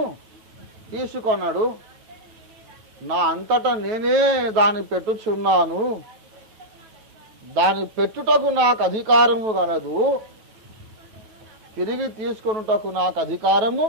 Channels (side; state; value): left; late; 9.1 ms